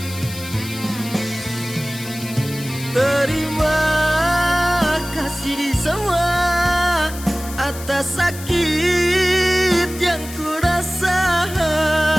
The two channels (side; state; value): left; noise; hiss, 13 dB below the sound